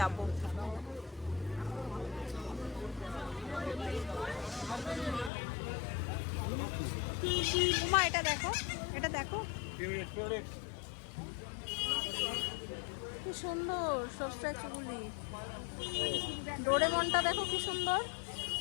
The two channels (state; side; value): drops out; right; at 5.3 s